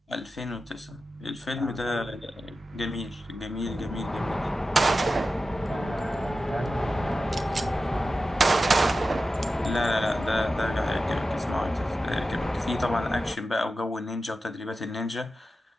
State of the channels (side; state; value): both; normal; correlation 0.93